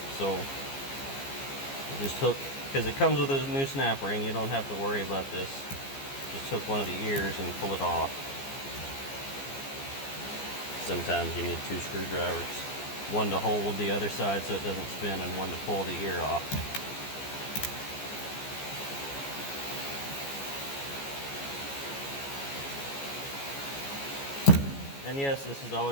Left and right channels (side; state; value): right; late; 15 ms